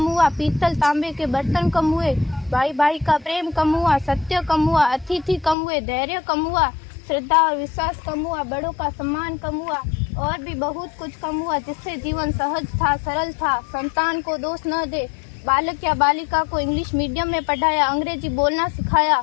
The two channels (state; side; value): drops out; right; at 5.6 s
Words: हुआ, पीतल तांबे के बर्तन कम हुए, भाई भाई का प्रेम कम हुआ, सत्य कम हुआ, अतिथि कम हुए, धैर्य कम हुआ, श्रद्धा और विश्वास कम हुआ, बड़ों का सम्मान कम हुआ और भी बहुत कुछ कम हुआ, जिससे जीवन सहज था, सरल था। संतान को दोष न दे। बालक या बालिका को इंग्लिश मीडियम में पढ़ाया, अंग्रेजी बोलना सिखाया,